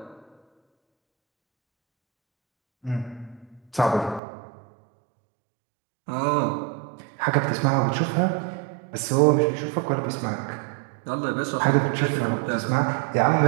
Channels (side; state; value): left; drops out; at 4.2 s